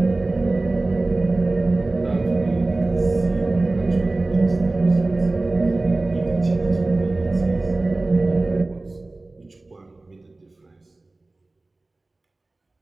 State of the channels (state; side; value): quieter; left; 3.1 dB